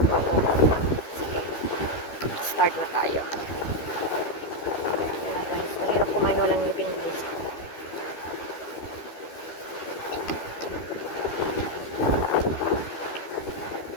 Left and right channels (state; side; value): late; right; 13 ms